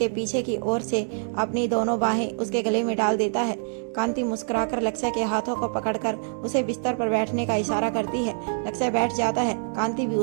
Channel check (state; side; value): silent; left; digital silence